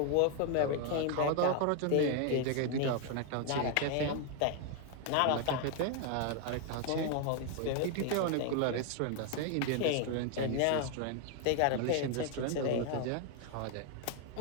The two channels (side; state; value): both; different; correlation 0.00